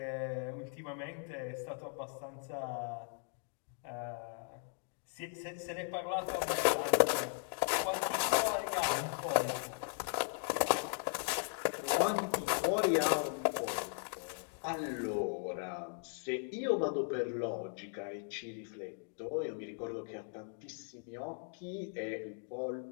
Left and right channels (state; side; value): silent; right; 53 dB below the other